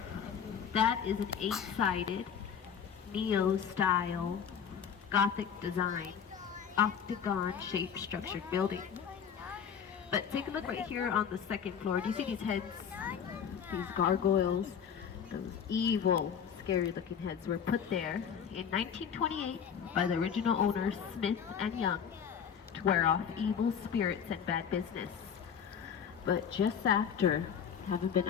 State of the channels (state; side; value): quieter; right; 7.6 dB